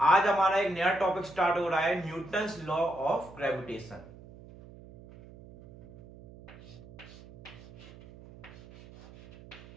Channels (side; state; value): right; noise; hum, 19 dB below the sound